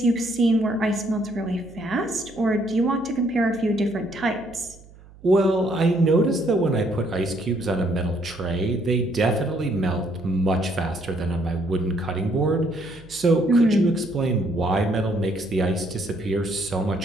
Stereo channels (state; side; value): noise; right; hum, 23 dB below the sound